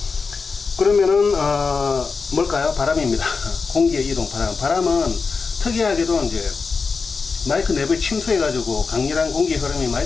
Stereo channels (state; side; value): quieter; right; 4.8 dB